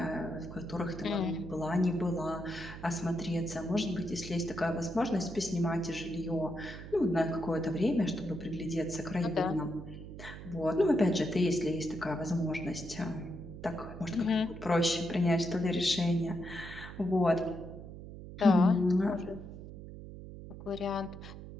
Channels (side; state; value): right; noise; hum, 12 dB below the sound